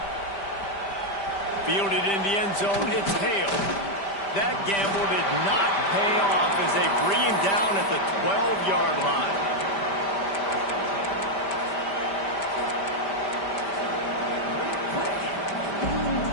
Fielded in the end zone, it's Hale. That gamble did not pay off as they bring him down at the 12-yard line.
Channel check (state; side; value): late; right; 5.1 ms